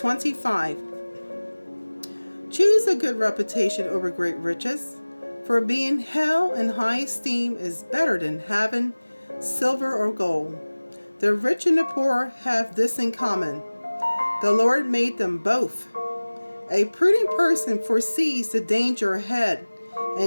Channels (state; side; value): inverted; both; correlation -1.00